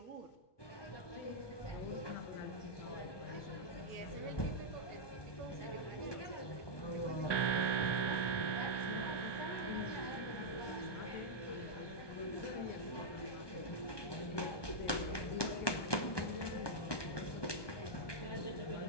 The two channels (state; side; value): late; right; 1.2 ms